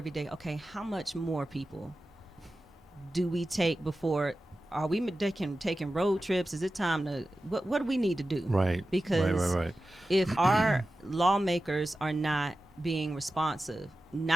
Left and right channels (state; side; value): normal; both; correlation 0.94